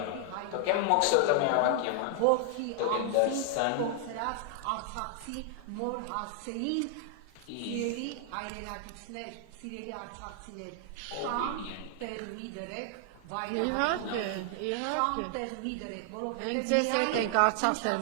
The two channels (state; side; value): different; both; correlation 0.00